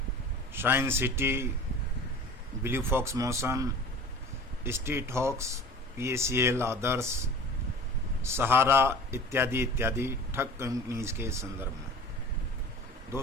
shine city, blue fox motion, street hawks, PACL, Adarsh, Sahara इत्यादि इत्यादि ठग कंपनीज के संदर्भ में।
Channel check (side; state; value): both; normal; correlation 0.40